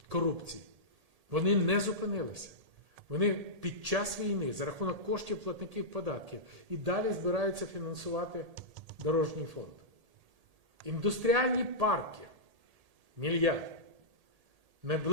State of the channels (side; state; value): left; late; 1.8 ms